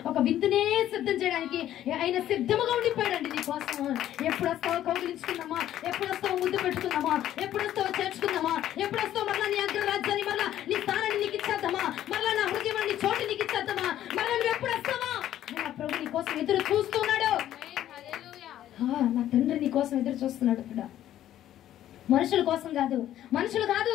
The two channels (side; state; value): right; quieter; 12.2 dB